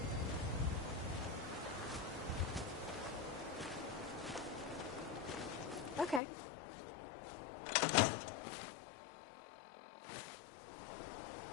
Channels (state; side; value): drops out; right; at 6.2 s